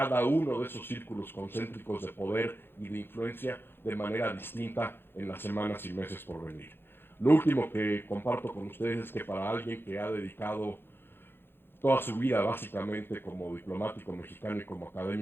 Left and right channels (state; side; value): late; right; 0.10 ms